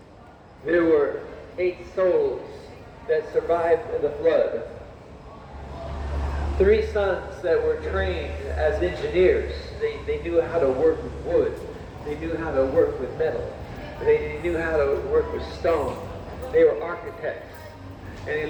There were 8 souls that survived the flood. 3 sons that were trained as engineers. They knew how to work with wood. They knew how to work with metal. They knew how to work with stone. They were architects. And they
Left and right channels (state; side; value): identical; both; correlation 1.00